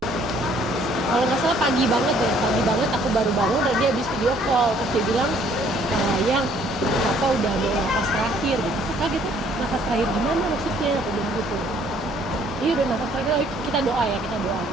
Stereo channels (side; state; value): both; normal; correlation 0.61